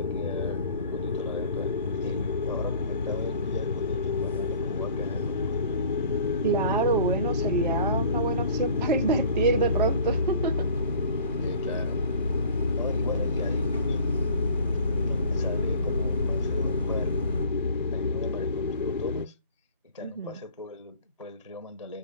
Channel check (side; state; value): both; inverted; correlation -0.48